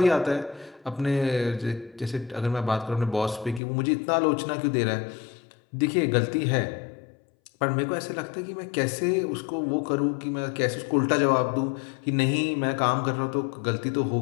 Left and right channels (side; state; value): right; drops out; at 3.6 s